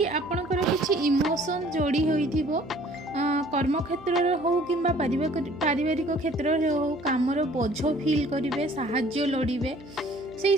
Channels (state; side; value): noise; right; hum, 21 dB below the sound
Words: आपणकर किछि इमोशन जोड़ी होइथिबो। कर्म क्षेत्र रे हो किंबा पारिवारिक क्षेत्र रे हो कामर बोझ फील करिवे, साहाय्य लोडिबे। से